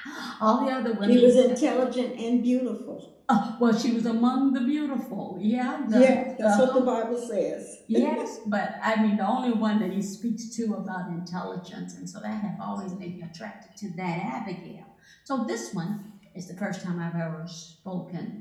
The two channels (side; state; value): both; identical; correlation 1.00